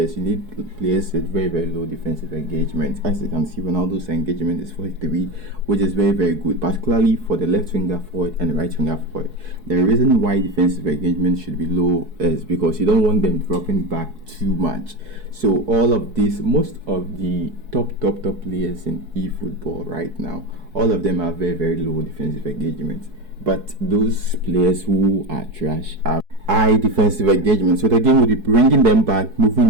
you need players with very low defensive engagement. As you can see, Ronaldo's engagement is 43, which is very good, particularly for the left winger forward and the right winger forward. The reason why defensive engagement should be low is because you don't want them dropping back too much. So all of this, most of the top players in eFootball right now, all of them have very low defensive engagement. But those players who are trash have high defensive engagement. So the game will be bringing them back,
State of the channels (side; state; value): left; late; 4.7 ms